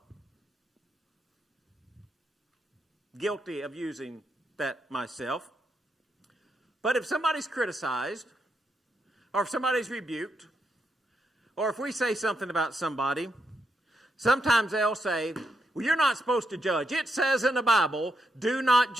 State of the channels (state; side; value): normal; both; correlation 0.81